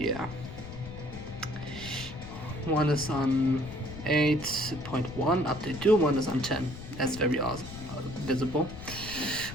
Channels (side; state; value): left; noise; rumble, 12 dB below the sound